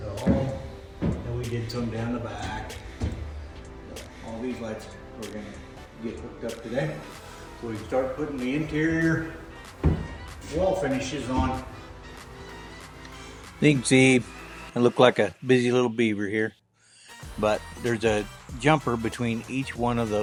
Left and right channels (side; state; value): both; identical; correlation 1.00